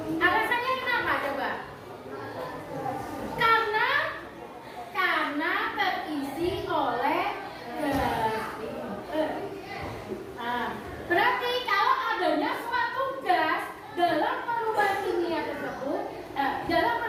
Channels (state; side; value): identical; both; correlation 1.00